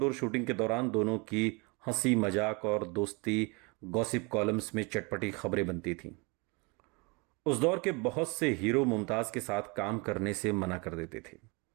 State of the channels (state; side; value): quieter; left; 29.6 dB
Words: शूटिंग के दौरान दोनों की हंसी मजाक और दोस्ती गॉसिप कॉलम्स में चटपटी खबरें बनती थीं। उस दौर के बहुत से हीरो मुमताज के साथ काम करने से मना कर देते थे,